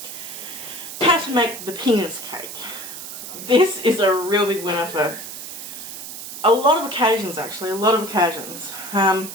how to make the penis cake. This is a real big winner for a lot of occasions actually,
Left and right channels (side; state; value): right; noise; hiss, 10 dB below the sound